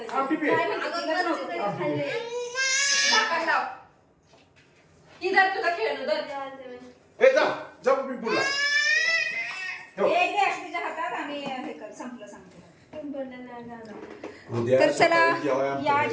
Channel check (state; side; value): identical; both; correlation 1.00